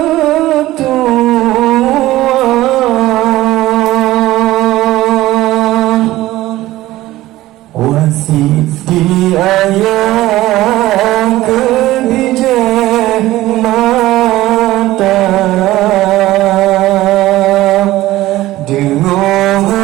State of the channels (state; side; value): quieter; left; 16.5 dB